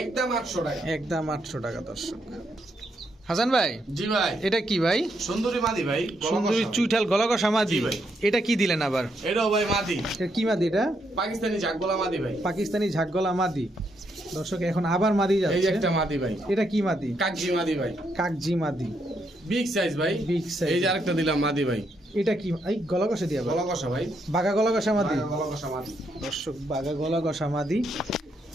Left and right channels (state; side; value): normal; both; correlation 0.77